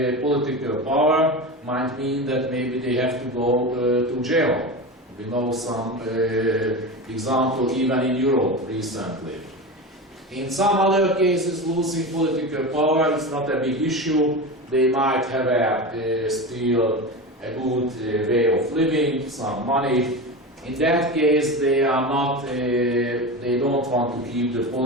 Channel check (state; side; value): normal; both; correlation 0.25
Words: political power might mean that maybe they have to go to jail. We know some example even in Europe recently. In some other cases, losing political power is not a big issue. They might have still a good way of living, some money. In that case, they are not. They don't want to keep the